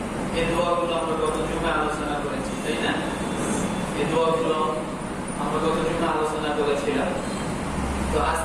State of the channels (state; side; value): identical; both; correlation 1.00